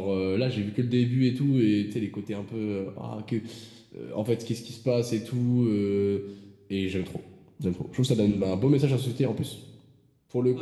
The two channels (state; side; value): identical; both; correlation 1.00